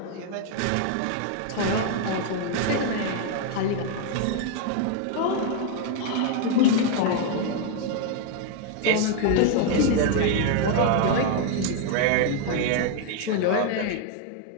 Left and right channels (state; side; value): different; both; correlation 0.01